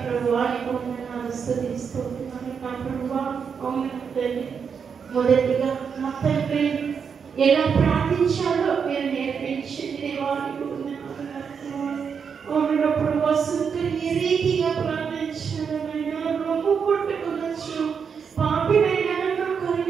ప్రభువా. నీకు వందనాలు స్తుతిస్తున్నాను నా ప్రభువా. అవును తండ్రి, మొదటిగా నా తండ్రి ఎలా ప్రార్థించాలో మీరు నేర్పించండి దేవా. నీకు వందనాలు నా ప్రభువా. అవును నా ప్రభువా, సుందరి ఏ రీతిగా ప్రార్థించాలనైనా రొమ్ము కొట్టుకొనొచ్చు. పాపినైనా నన్ను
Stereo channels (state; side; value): quieter; left; 6.5 dB